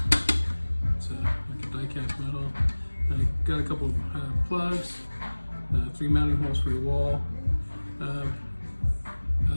It's like a die-cast metal. Got a couple plugs. 3 mounting holes for your wall.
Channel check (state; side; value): inverted; both; correlation -1.00